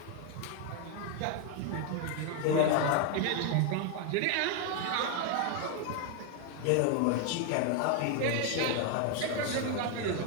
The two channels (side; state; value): both; different; correlation 0.01